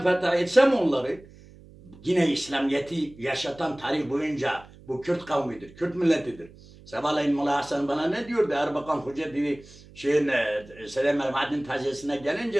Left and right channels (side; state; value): right; noise; hum, 22 dB below the sound